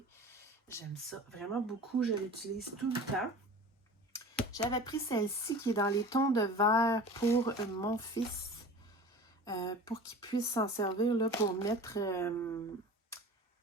J'aime ça vraiment beaucoup, je l'utilise tout le temps. J'avais pris celle-ci qui est dans les tons de vert pour mon fils. Pour qu'il puisse s'en servir là, pour mettre...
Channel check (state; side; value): normal; both; correlation 0.38